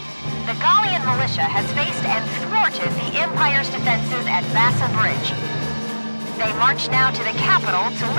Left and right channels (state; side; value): inverted; both; correlation -1.00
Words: The Gallian militia has faced and thwarted the Empire's defenses at Vassa Bridge. They march now to the capital to